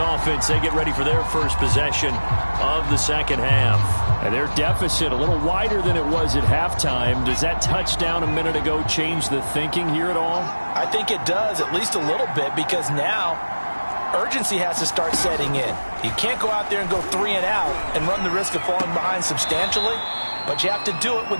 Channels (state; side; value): inverted; both; correlation -1.00